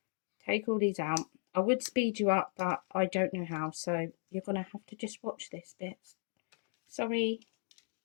Take all these out. I would speed you up, but I don't know how, so you're going to have to just watch this bit. Sorry.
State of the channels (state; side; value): silent; right; 54 dB below the other